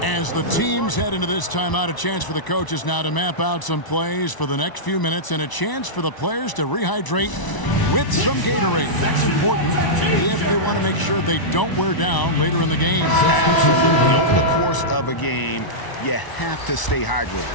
As the teams head into this timeout, a chance for the coaches now to map out some plays for the next few minutes and a chance for the players to rehydrate with some Gatorade. That's important if they want to make sure they don't wear down later in the game. Absolutely. Over the course of a game, you have to stay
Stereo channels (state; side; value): late; right; 1.0 ms